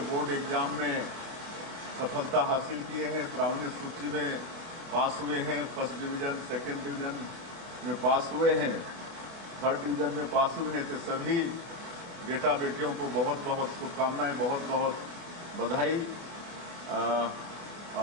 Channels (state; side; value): late; left; 24 ms